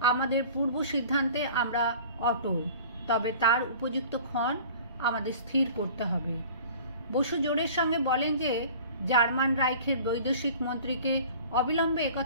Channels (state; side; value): inverted; both; correlation -0.44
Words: আমাদের পূর্ব সিদ্ধান্তে আমরা অটল, তবে তার উপযুক্ত ক্ষণ আমাদের স্থির করতে হবে। বসু জোরের সঙ্গে বলেন যে জার্মান রাইখের বৈদেশিক মন্ত্রীকে অবিলম্বে